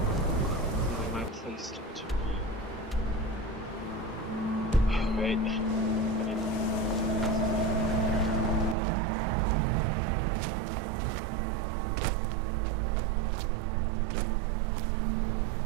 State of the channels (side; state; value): left; drops out; at 8.8 s